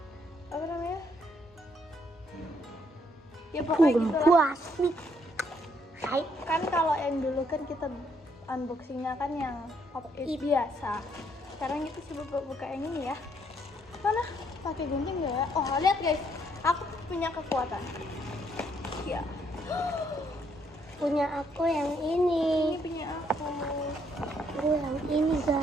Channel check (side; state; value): both; normal; correlation 0.71